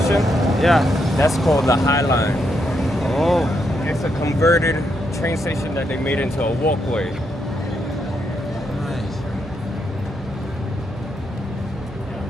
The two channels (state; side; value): normal; both; correlation 0.80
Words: Yeah. that's called the High Line. Oh. It's a converted train station that they made into a walkway. Nice.